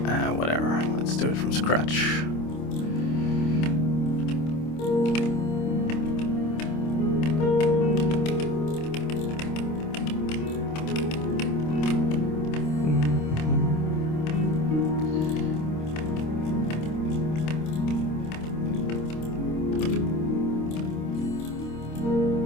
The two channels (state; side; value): late; right; 26 ms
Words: whatever, let's do it from scratch.